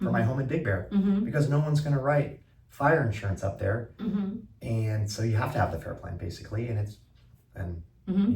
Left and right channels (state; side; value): identical; both; correlation 1.00